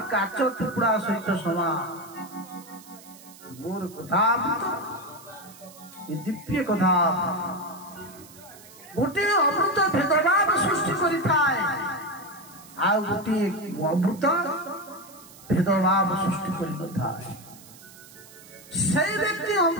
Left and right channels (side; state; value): right; noise; hiss, 21 dB below the sound